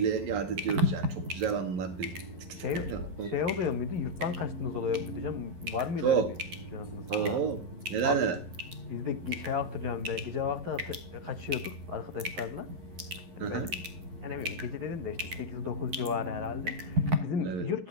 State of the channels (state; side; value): late; left; 11 ms